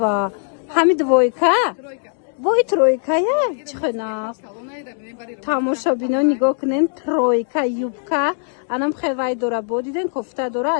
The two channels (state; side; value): silent; right; 66 dB below the other